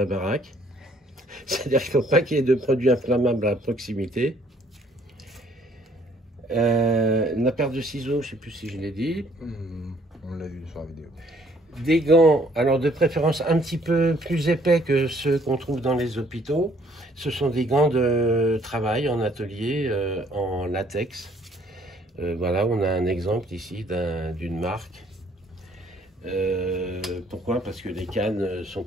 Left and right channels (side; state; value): both; normal; correlation 0.62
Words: baraque. C'est-à-dire qu'il ne faut pas qu'il y ait de produits inflammables à proximité. La paire de ciseaux, je ne sais plus si je l'ai dit. On l'a vu sur la vidéo. Des gants, alors de préférence un petit peu plus épais que ceux qu'on trouve dans les hôpitaux. Ce sont des gants de travail en atelier en latex. Voilà, on a un exemple ici d'une marque. Pourquoi? Parce que les cannes ne sont